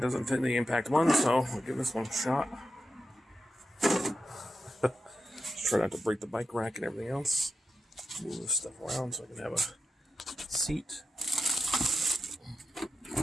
doesn't fit the impact one, so we'll give this one a shot. Just try not to break the bike rack and everything else. Move this stuff around so I can have a seat.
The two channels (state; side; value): normal; both; correlation 0.89